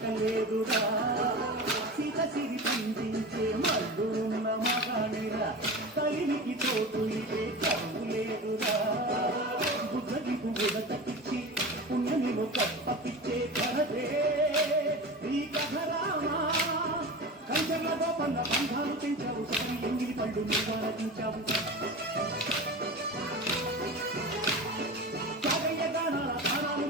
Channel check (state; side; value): normal; both; correlation 0.30